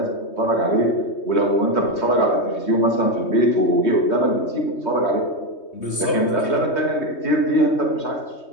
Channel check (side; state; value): right; late; 3.2 ms